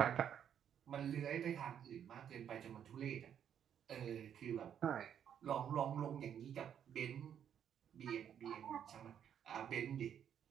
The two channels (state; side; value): quieter; left; 9.0 dB